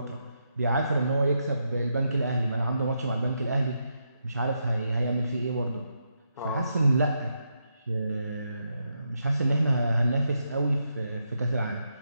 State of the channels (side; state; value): both; inverted; correlation -0.82